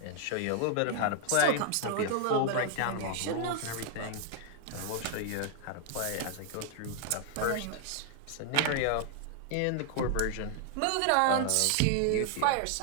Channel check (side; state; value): both; different; correlation 0.00